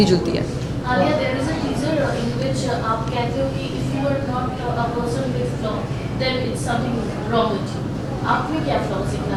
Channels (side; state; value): both; identical; correlation 1.00